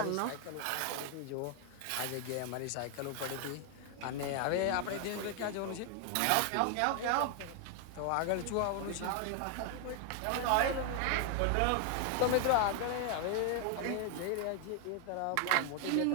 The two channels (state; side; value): different; both; correlation 0.00